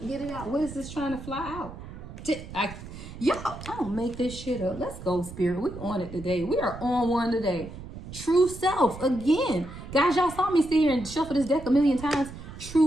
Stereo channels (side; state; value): right; noise; rumble, 13 dB below the sound